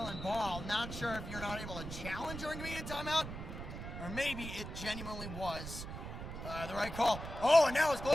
ball. Not sure if you're not able to challenge during media timeout, or maybe it genuinely was the right call. Oh, and now it's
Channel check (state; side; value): noise; right; rumble, 8 dB below the sound